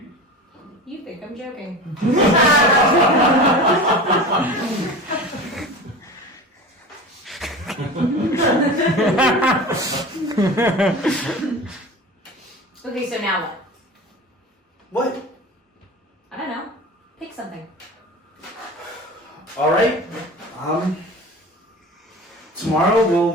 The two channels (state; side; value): normal; both; correlation 0.33